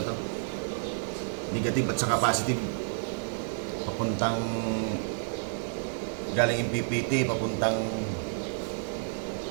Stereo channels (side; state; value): left; silent; digital silence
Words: to. Negative at saka positive. Papuntang galing yung PPT, papuntang